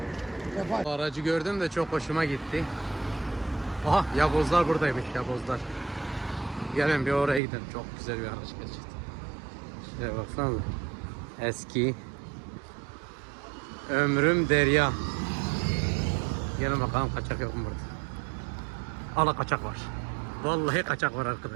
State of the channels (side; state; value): left; drops out; at 7.4 s